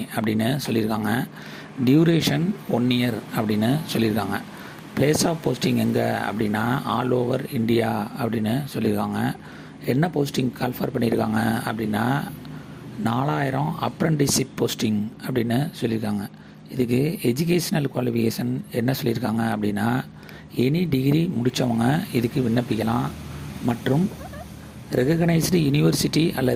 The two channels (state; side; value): identical; both; correlation 1.00